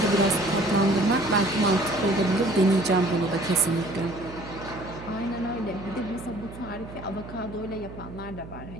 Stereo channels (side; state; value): right; noise; hum, 14 dB below the sound